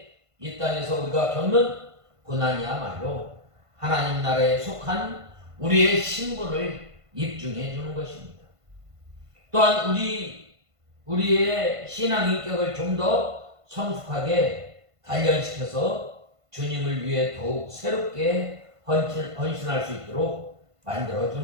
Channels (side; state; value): left; late; 1.5 ms